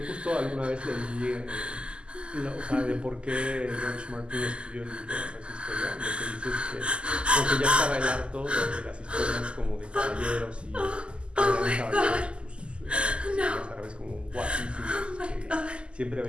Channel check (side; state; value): left; late; 0.051 ms